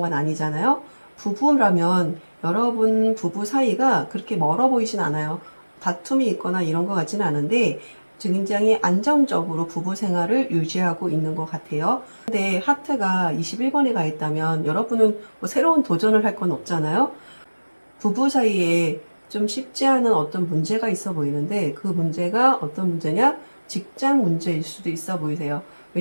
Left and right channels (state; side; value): inverted; both; correlation -1.00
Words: 아니잖아요. 부부라면 여러분 부부 사이가 그렇게 멀어 보이진 않아요. 다툼이 있거나 이런 것 같지는 않은데 굉장히 안정적으로 부부 생활을 유지하고 있는 것 같아요. 근데 하트가 21번에 가 있다면 여러분은 뭐 새로운 도전을 할 건 없잖아요. 부부 사이에 좀 쉽지 않은 어떤 문제가 있어 보이는데 그 문제가 어떤 문제냐? 직장 문제일 수도 있어 보이세요.